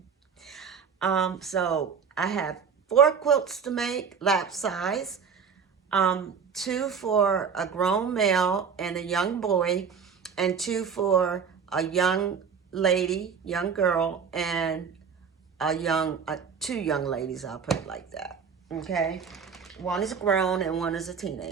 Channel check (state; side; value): quieter; left; 6.4 dB